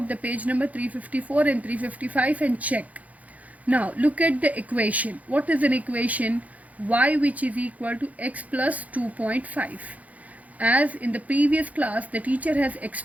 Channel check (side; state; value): left; late; 0.072 ms